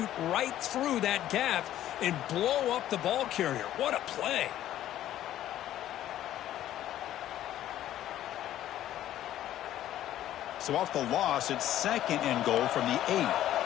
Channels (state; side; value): quieter; right; 12.6 dB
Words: right through that gap and blow up the ball carrier. What a play. So off the loss, it's second and goal from the 8.